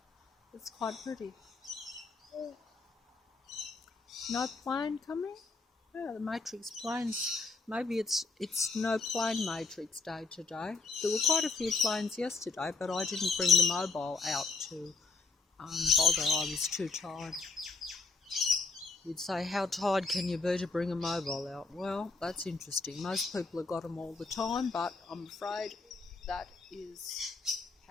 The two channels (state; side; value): quieter; right; 4.0 dB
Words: It's quite pretty. No plane coming? Yeah, the Matrix planes. Maybe it's no plane Matrix day today. There were quite a few planes yesterday, but I didn't bring the mobile out to bother. I was too tired. You'd say, how tired can you be to bring a mobile out? Well, that's interesting. Most people have got them all the time, but I'm afraid that is